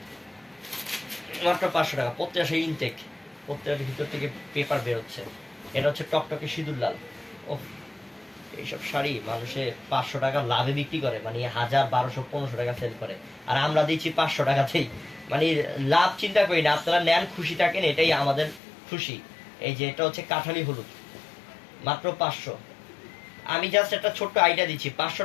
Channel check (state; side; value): drops out; right; at 18.6 s